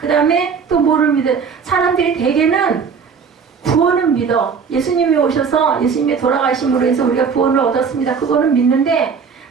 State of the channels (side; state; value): left; quieter; 6.0 dB